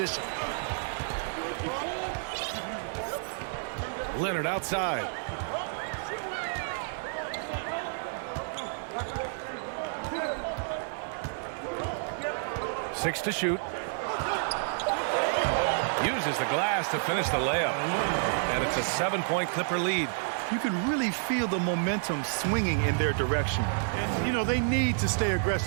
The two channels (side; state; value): left; silent; digital silence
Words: Leonard outside. Six to shoot. Uses the glass to finish the layup. And it's a 7-point Clipper lead. You can really feel the momentum swinging in their direction. And, you know, they need to stay